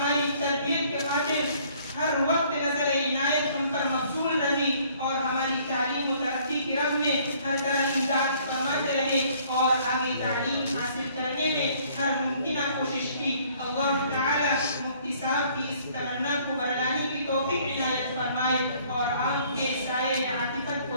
تربیت کے خاطر ہر وقت نظر عنایت ہم پر مبذول رہی اور ہماری تعلیم و ترقی کی راہ میں ہر طرح امداد فرماتے رہے اور آگے تعلیم حاصل کرنے میں ہر ممکنہ کوشش کی۔ اللہ تعالی مفتی صاحب کی اس تمنا کو برداشت کی توفیق عنایت فرمائے اور آپ کے سائے عاطفت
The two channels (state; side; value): inverted; both; correlation -0.60